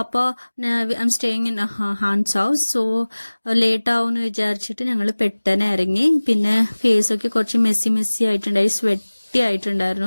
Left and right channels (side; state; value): both; inverted; correlation -1.00